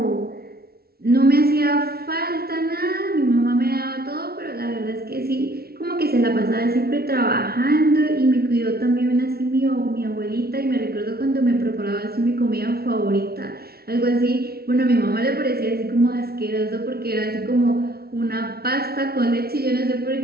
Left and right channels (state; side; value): late; left; 0.45 ms